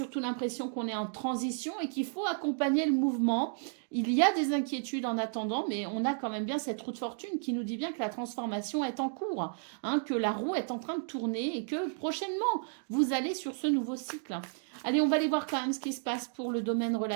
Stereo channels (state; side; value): silent; left; digital silence